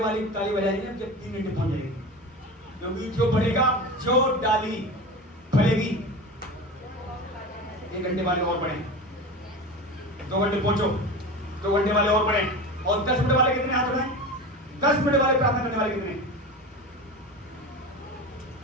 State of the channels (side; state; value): both; normal; correlation 0.29